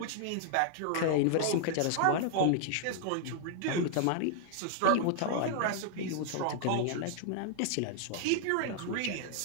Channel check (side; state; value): both; different; correlation 0.00